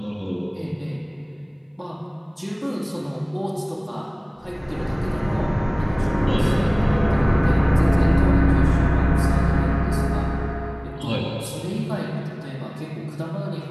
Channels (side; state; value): both; identical; correlation 1.00